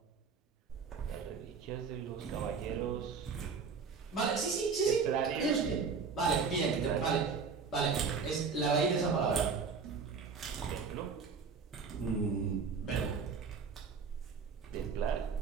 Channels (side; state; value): left; quieter; 5.4 dB